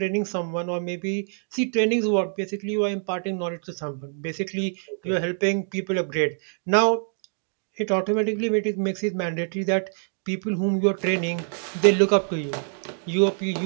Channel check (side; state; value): left; silent; digital silence